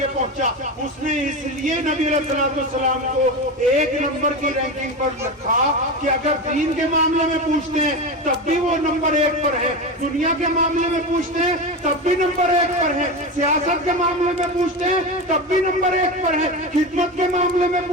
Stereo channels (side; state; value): both; normal; correlation 0.21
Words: پہنچا، اس نے اس لیے نبی علیہ السلام کو 1 نمبر کی رینکنگ پر رکھا کہ اگر دین کے معاملے میں پوچھتے ہیں تب بھی وہ نمبر 1 پر ہے، دنیا کے معاملے میں پوچھتے ہیں تب بھی نمبر 1 پر ہے، سیاست کے معاملے میں پوچھتے ہیں تب بھی نمبر 1 پر ہے، خدمت کے معاملے میں